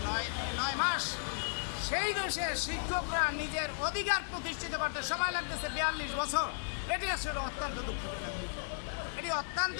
9 মাস। সেই দেশের শিক্ষকরা নিজের অধিকার প্রতিষ্ঠিত করতে সময় লাগতেছে 42 বছর। এটি আসলে অত্যন্ত দুঃখজনক বিষয়। এটি অত্যন্ত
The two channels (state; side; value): silent; right; digital silence